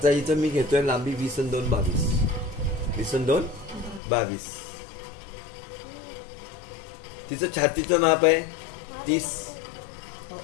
इथं मी घेतोय लांबी 20 आणि 2 22, 20 आणि 2 22. तिचं छातीचं माप आहे 30.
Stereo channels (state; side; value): drops out; right; at 4.0 s